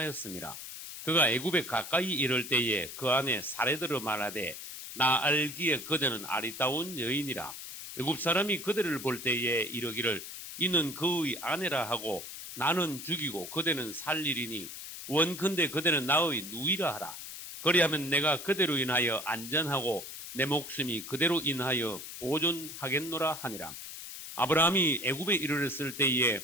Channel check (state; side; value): noise; left; hiss, 10 dB below the sound